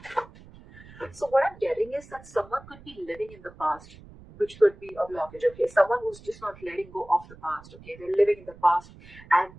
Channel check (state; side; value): noise; right; rumble, 21 dB below the sound